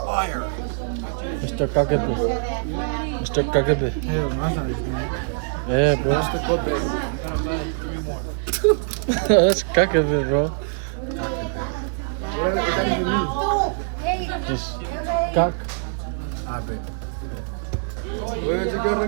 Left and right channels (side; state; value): left; silent; digital silence